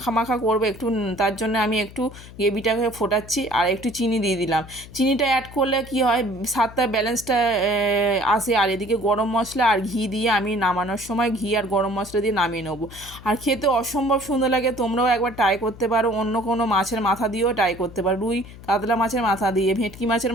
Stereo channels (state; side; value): noise; left; hum, 17 dB below the sound